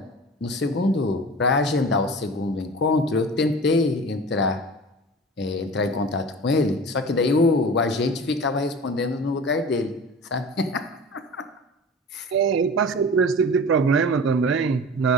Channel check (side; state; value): both; normal; correlation 0.37